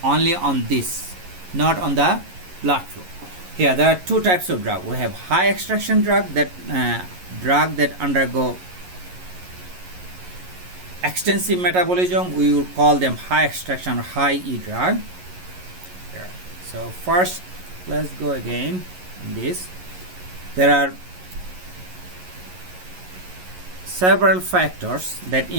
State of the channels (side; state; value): left; late; 11 ms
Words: only on this, not on the blood flow. Here there are two types of drug. We have high extraction drug, that drug that undergo extensive metabolism. We will call them high extraction or high E drug. Here. So first, let's go again on this. There are several factors that